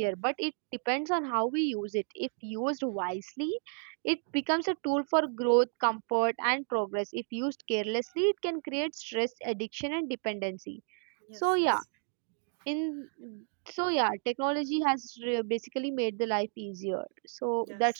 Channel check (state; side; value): silent; left; 56 dB below the other